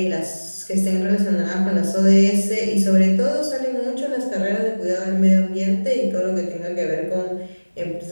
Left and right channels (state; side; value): inverted; both; correlation -1.00